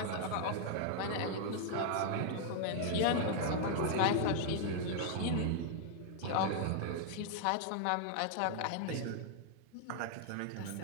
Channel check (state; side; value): different; both; correlation 0.00